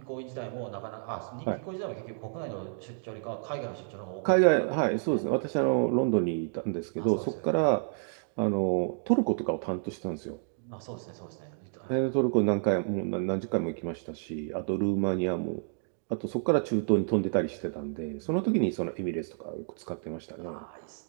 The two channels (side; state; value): left; silent; digital silence